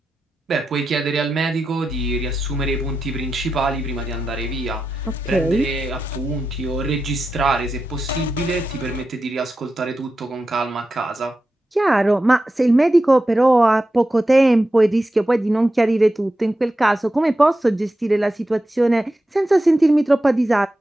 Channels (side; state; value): both; normal; correlation 0.90